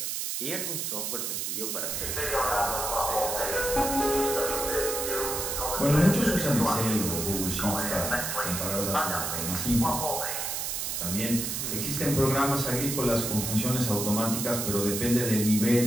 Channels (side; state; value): right; noise; hiss, 2 dB below the sound